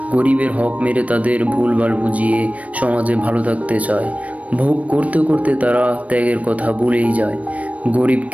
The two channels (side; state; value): left; late; 0.067 ms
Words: গরিবের হক মেরে তাদের ভুলভাল বুঝিয়ে সমাজে ভালো থাকতে চায়। ভোগ করতে করতে তারা ত্যাগের কথা ভুলেই যায়।